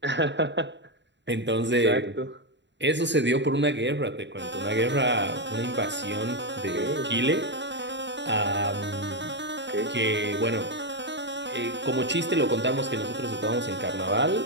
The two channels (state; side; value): late; left; 0.52 ms